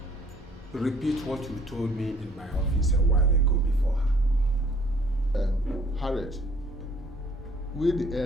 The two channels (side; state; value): both; normal; correlation 0.59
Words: repeat what you told me in my office a while ago before her. Harriet, we the